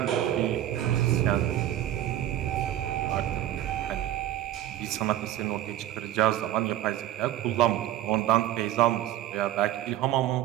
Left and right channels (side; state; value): left; quieter; 13.0 dB